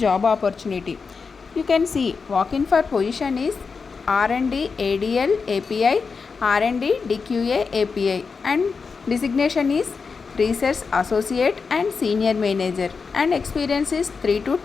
opportunity. You can see walk-in for position is R&D ADL API, R&D DQA API and designation is Research Associate and Senior Manager and experience is 3 to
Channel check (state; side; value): quieter; right; 5.0 dB